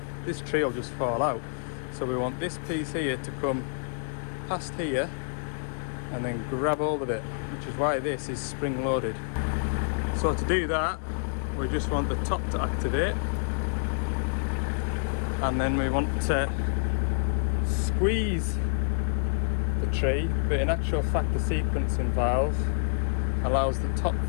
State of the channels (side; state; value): right; silent; digital silence